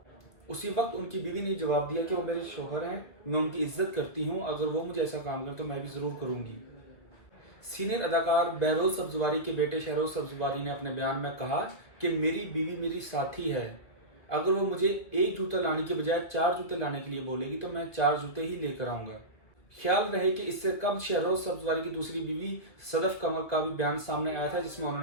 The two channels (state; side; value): late; right; 1.8 ms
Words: उसी वक्त उनकी बीवी ने जवाब दिया कि वो मेरे शोहर हैं, मैं उनकी इज्जत करती हूँ, अगर वो मुझे ऐसा काम करें तो मैं भी ज़रूर करूँगी। सीनियर अदाकार बहरोज सब्जवारी के बेटे शहरोज सब्जवारी ने अपने बयान में कहा कि मेरी बीवी मेरी साथी है, अगर वो मुझे एक जूता लाने के बजाय चार जूते लाने के लिए बोलेगी तो मैं चार जूते ही लेकर आऊंगा। ख्याल रहे कि इससे कब शहरोज सब्जवारी की दूसरी बीवी सदफ कमर का भी बयान सामने आया था, जिसमें